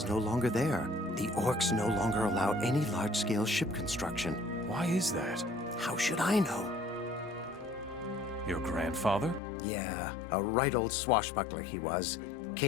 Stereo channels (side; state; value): right; drops out; at 9.4 s